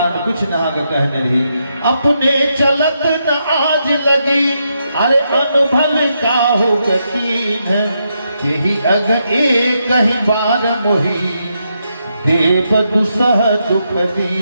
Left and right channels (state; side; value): inverted; both; correlation -0.81